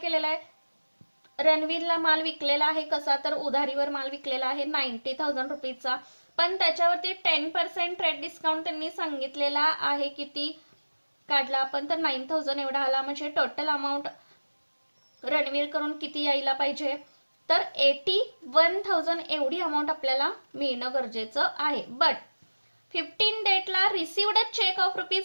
आहे? रणवीरला माल विकलेला आहे कसा? तर उधारीवर माल विकलेला आहे 90,000 पण त्याच्यावरती 10% ट्रेड डिस्काउंट त्यांनी सांगितलेला आहे. किती काढला आपण? तर 9,000 एवढा आला. म्हणजे टोटल अमाऊंट रणवीर कडून किती यायला पाहिजे? तर 81,000 एवढी अमाऊंट आपल्याला मिळणं गरजेचं आहे. बट 15 डेटला रिसिव्ड चेक ऑफ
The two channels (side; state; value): both; inverted; correlation -1.00